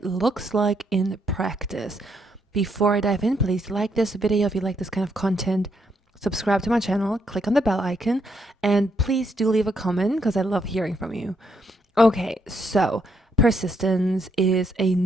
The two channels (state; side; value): normal; both; correlation 0.75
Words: looks like in practice. Before I dive in, please like this video if you like this kind of content. Subscribe to my channel, click on the bell icon, and please do leave a comment because I love hearing from you. Okay, so persistence is a